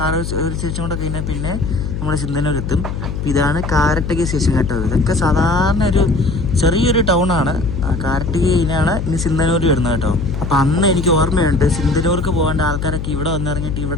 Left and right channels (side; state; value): left; noise; hum, 5 dB below the sound